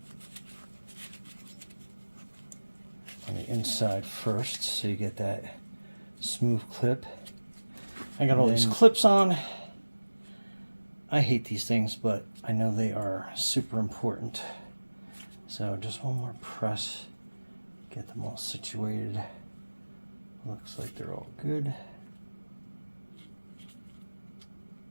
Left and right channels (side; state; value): both; inverted; correlation -1.00